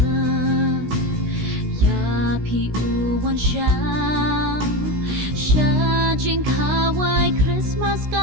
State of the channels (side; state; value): left; late; 16 ms